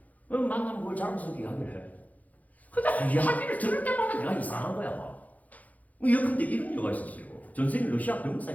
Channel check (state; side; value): late; right; 0.077 ms